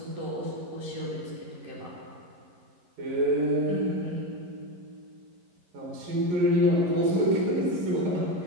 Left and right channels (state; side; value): late; left; 11 ms